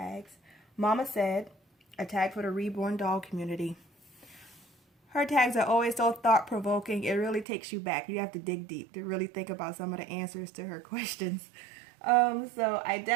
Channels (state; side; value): drops out; left; at 7.5 s